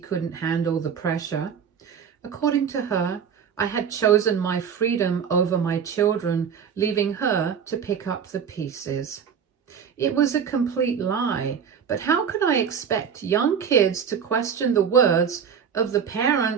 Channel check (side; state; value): left; quieter; 7.3 dB